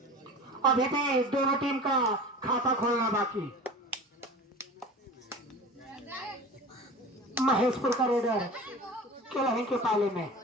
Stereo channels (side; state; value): both; normal; correlation 0.36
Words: अभी भी दोनों टीम का खाता खोलना बाकी। महेशपुर का रेडर केलही के पाले में